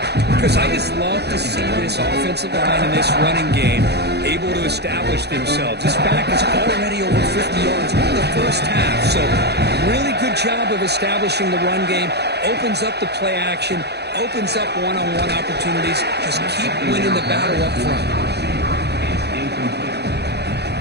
Because I just love to see this offensive line in this running game able to establish themselves. This back is already over 50 yards in the first half, so really good job of establishing the run game, opens up the play action, opens up one-on-one opportunities. Just keep winning the battle up front.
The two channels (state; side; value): late; left; 0.48 ms